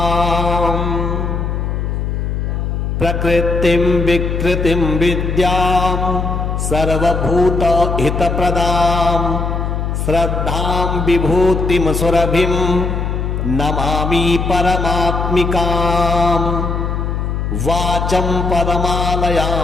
प्रकृतिं विकृतिं विद्यां सर्वभूतहितप्रदां श्रद्धां विभूतिं सुरभिं नमामि परमात्मिकाम् वाचं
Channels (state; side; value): noise; left; hum, 2 dB below the sound